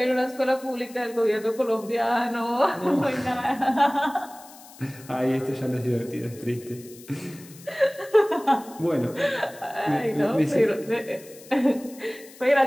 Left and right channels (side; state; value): left; noise; hiss, 21 dB below the sound